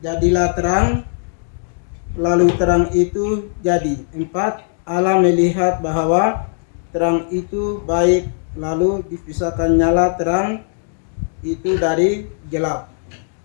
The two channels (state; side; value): silent; right; digital silence